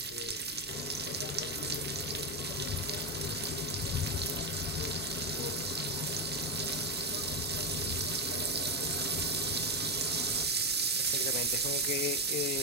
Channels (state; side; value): normal; both; correlation 0.09